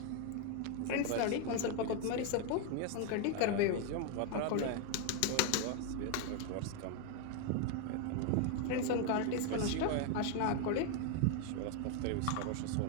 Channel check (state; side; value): different; both; correlation 0.01